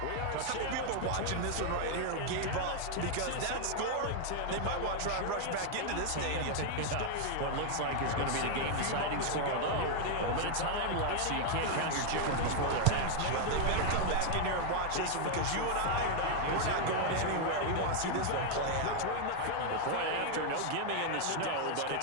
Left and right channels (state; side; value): different; both; correlation 0.00